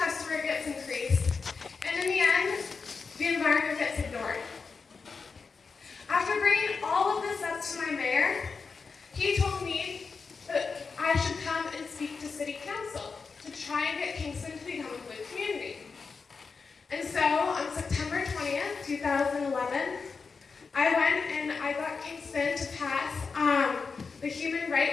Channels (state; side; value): quieter; right; 4.9 dB